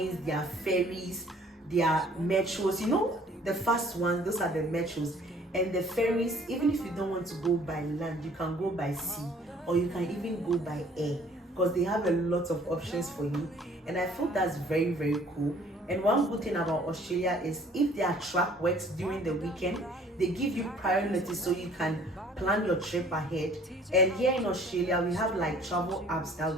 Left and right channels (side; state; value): both; normal; correlation 0.55